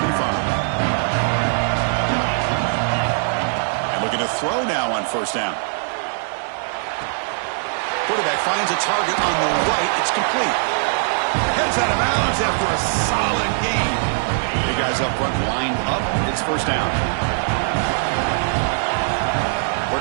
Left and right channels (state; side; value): silent; left; digital silence